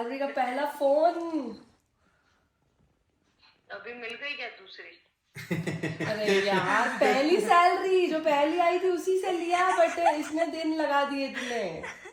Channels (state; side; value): identical; both; correlation 1.00